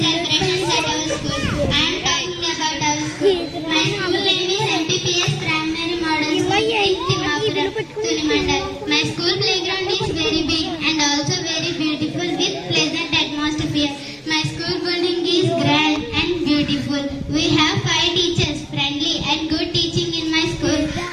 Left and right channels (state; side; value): identical; both; correlation 1.00